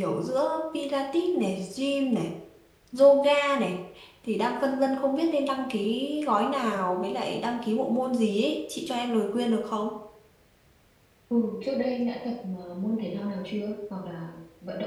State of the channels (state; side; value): identical; both; correlation 1.00